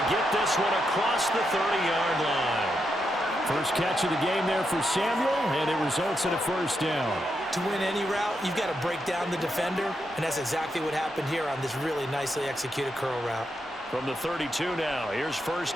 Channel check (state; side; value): normal; both; correlation 0.83